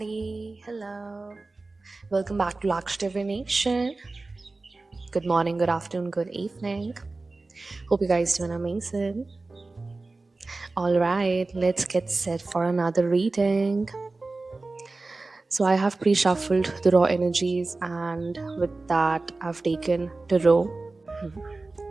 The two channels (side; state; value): left; quieter; 3.4 dB